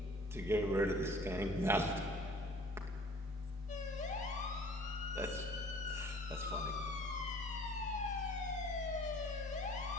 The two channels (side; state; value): both; normal; correlation 0.51